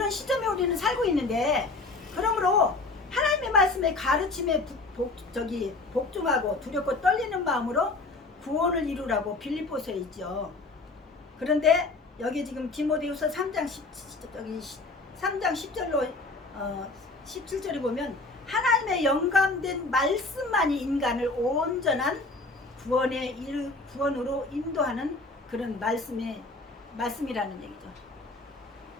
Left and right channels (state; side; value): quieter; right; 3.4 dB